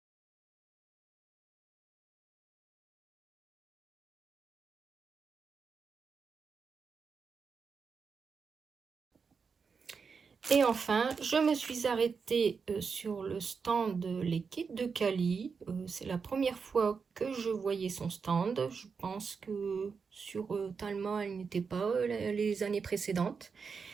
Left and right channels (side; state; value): left; quieter; 5.5 dB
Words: Et enfin, je me suis arrêtée sur le stand Les Kits de Cali. C'est la première fois que je voyais son stand. Je pense que sur Talma, elle n'était pas les années précédentes.